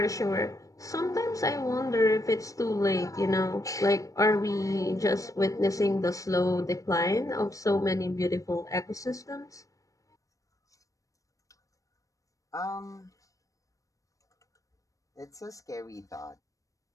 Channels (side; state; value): right; late; 0.16 ms